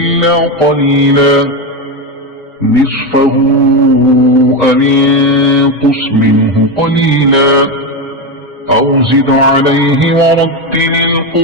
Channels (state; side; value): normal; both; correlation 0.13